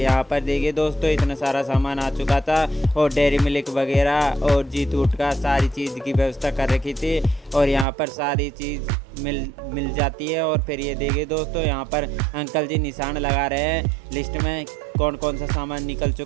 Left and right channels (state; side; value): drops out; left; at 7.9 s